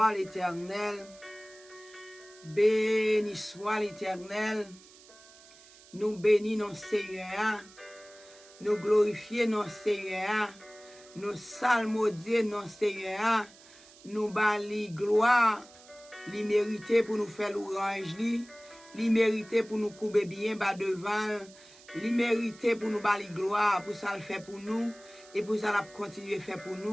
l'Éternel. Béni soit l'Éternel. Nous bénissons Seigneur. Nous glorifions notre Seigneur. Nous salmodions notre Seigneur. Nous bali gloire. Li mérité pour nous faire l'orange li mérité pour nous couper bien bas devant. Li mérité pour nous bali gloire, pour ça le fait pour nous et pour ça la continuer faire pour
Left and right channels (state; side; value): noise; right; hiss, 23 dB below the sound